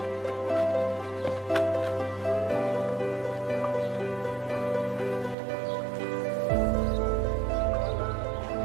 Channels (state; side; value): drops out; left; at 5.4 s